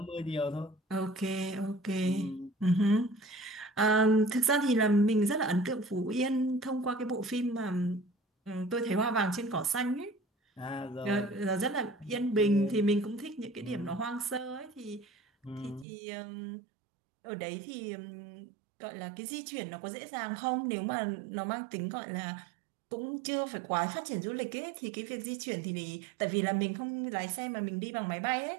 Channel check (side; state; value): left; drops out; at 15.9 s